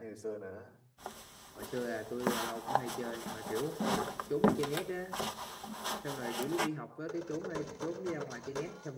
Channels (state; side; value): identical; both; correlation 1.00